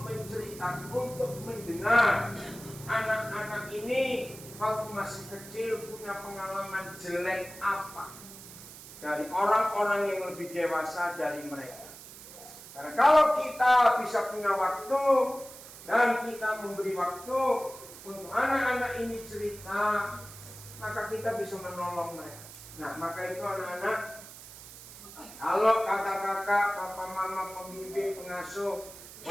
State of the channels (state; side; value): noise; right; hiss, 16 dB below the sound